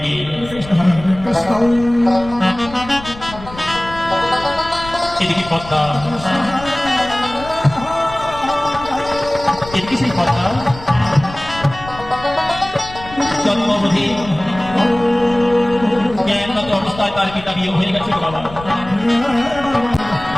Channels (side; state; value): left; noise; rumble, 16 dB below the sound